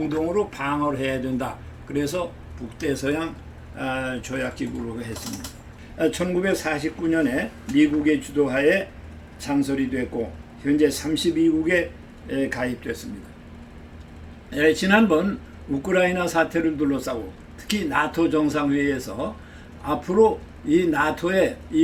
방어를 해야 된다. 그래서 북대서양 조약기구로 했습니다. 1949년에 미국의 주도하에 창설이 됐고 현재 32국에 가입됐습니다. 지난번 우크라이나 사태를 둘러싸고 특히 나토 정상회의에서 앞으로 이 나토의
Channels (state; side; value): identical; both; correlation 1.00